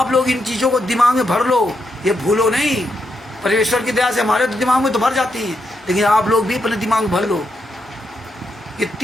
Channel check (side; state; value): both; normal; correlation 0.82